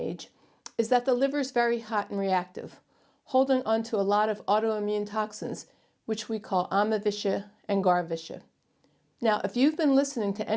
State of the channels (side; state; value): both; identical; correlation 1.00